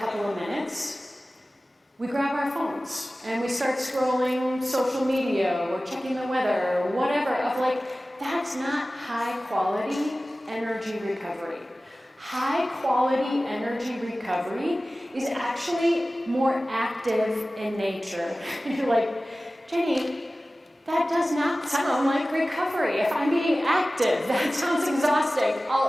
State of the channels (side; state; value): both; normal; correlation 0.96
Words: of minutes, we grab our phones and we start scrolling social media or checking the weather or whatever that's not high quality energy recovery. High quality energy recovery is actually more active in nature. You're like, Jenny, that does not sound like recovery. If I'm being active, that sounds exhausting.